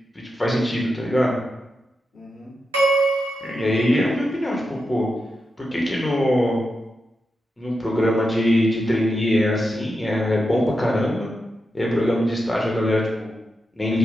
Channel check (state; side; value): normal; both; correlation 0.88